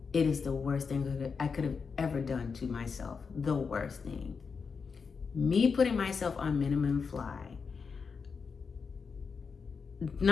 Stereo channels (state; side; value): quieter; right; 5.5 dB